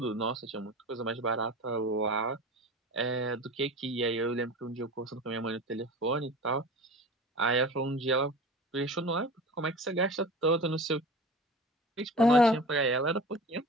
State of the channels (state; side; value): normal; both; correlation 0.36